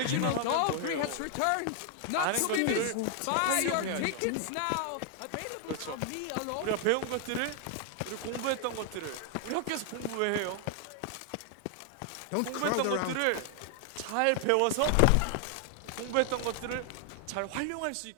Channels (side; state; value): both; different; correlation 0.00